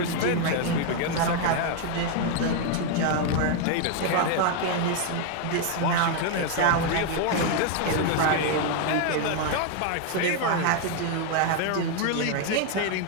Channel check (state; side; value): different; both; correlation 0.01